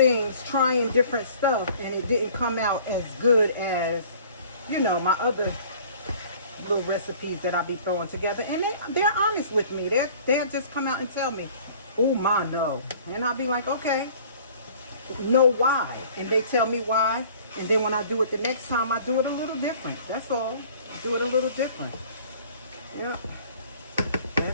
trying different stuff, and it didn't come out as good as, you know, my other little recipes that I be throwing together. And they're honest with me. They'll just come out and tell me, "Oh, Ma, no." And I'll be like, "Okay." know why. And they tell me why. And then when I do it the next time, I do it a little different. That's all. I do it a little different. Yeah.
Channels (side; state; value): both; inverted; correlation -0.50